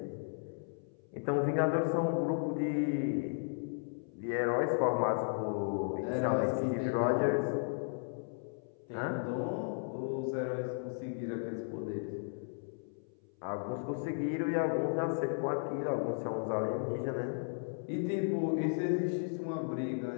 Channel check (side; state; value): right; silent; 54 dB below the other